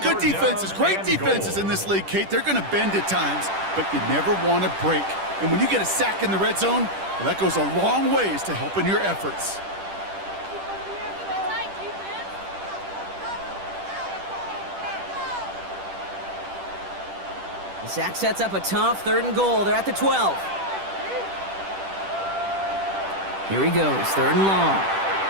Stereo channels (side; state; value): left; late; 10 ms